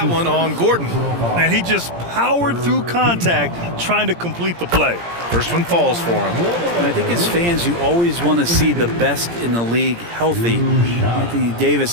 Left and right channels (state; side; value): late; left; 17 ms